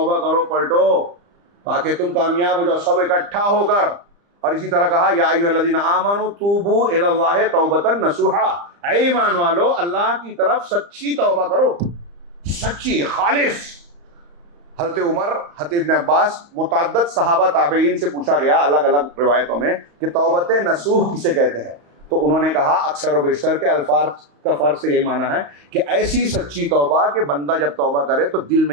کرو، پلٹو تاکہ تم کامیاب ہو جاؤ، سب اکٹھا ہو کر۔ اور اسی طرح کہا یا ایھا الذین آمنوا توبوا الی اللہ توبۃ نصوحا، اے ایمان والو اللہ کی طرف سچی توبہ کرو، سچی خالص۔ حضرت عمر، حضرت ابن عباس، متعدد صحابہ تابعین سے پوچھا گیا الگ الگ روایتوں میں کہ توبۃ نصوح کسے کہتے ہیں، تو انہوں نے کہا اکثر و بیشتر کے الفاظ کا فرق سے یہی معنی ہے کہ ایسی سچی توبہ کہ بندہ جب توبہ کرے تو دل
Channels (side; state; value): left; late; 35 ms